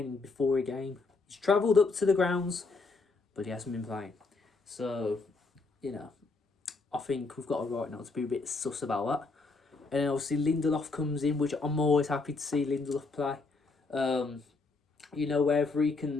before a game. He's travelled up to the grounds, but he hasn't been playing. So, I think we've got a right now to be a bit sus about that. And then obviously Lindelof comes in, which I'm always happy to see Lindelof play. Wherever he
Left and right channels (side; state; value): right; quieter; 3.9 dB